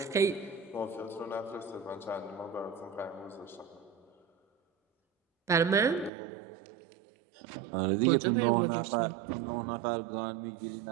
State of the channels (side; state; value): left; drops out; at 6.1 s